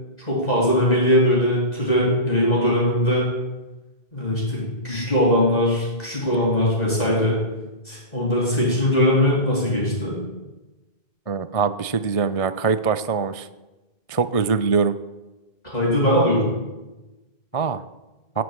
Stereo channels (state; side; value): late; right; 1.6 ms